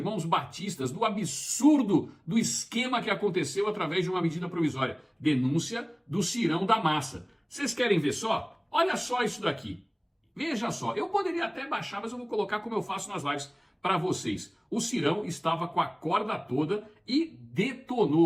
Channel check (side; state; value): both; identical; correlation 1.00